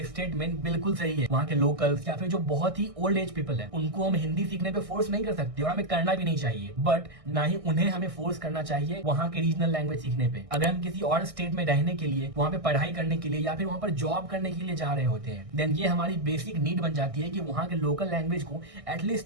स्टेटमेंट बिल्कुल सही है। वहाँ के लोकल्स या फिर जो बहुत ही ओल्ड एज पीपल है उनको हम हिंदी सीखने पे फोर्स नहीं कर सकते और हमें करना भी नहीं चाहिए, बट ना ही उन्हें हमें फोर्स करना चाहिए वहाँ के रीजनल लैंग्वेज सीखने पे। अगर हम किसी और स्टेट में रहने के लिए, वहाँ पे पढ़ाई करने के लिए या फिर वहाँ पर जॉब करने के लिए जा रहे होते हैं देन ये हमारी बेसिक नीड बन जाती है कि वहाँ के लोकल लैंग्वेज को एटलीस्ट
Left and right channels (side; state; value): left; late; 1.6 ms